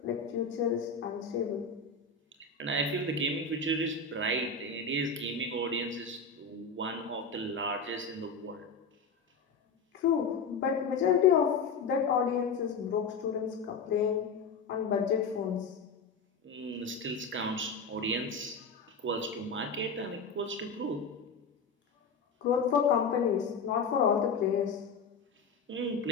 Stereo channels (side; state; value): right; quieter; 4.5 dB